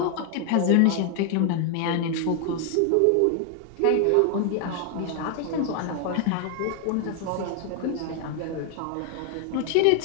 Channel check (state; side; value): different; both; correlation 0.00